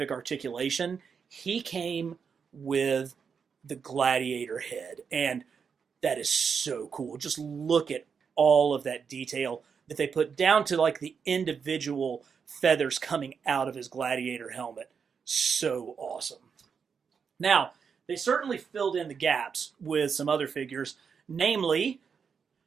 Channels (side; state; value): left; quieter; 6.3 dB